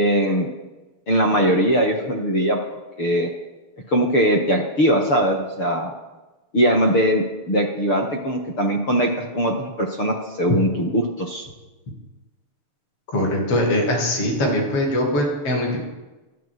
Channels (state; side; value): late; right; 6.8 ms